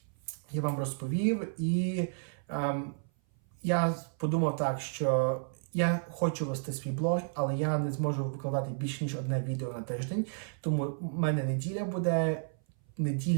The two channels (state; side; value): silent; left; 56 dB below the other